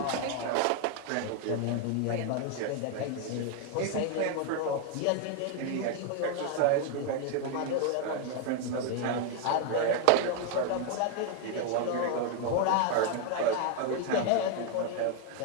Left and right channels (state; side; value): different; both; correlation 0.01